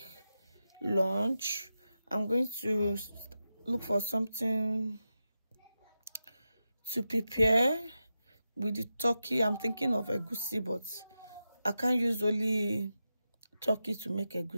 lunch. I'm going to look for something to prepare with the turkey. I'm thinking of egusi, but I can't use only turkey to make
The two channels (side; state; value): both; inverted; correlation -0.90